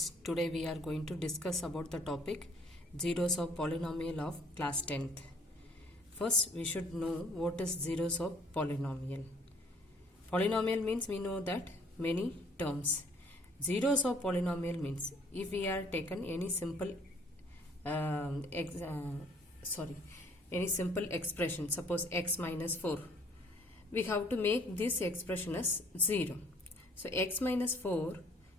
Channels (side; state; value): both; normal; correlation 0.59